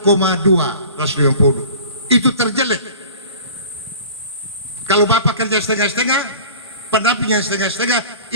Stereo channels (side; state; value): both; inverted; correlation -0.42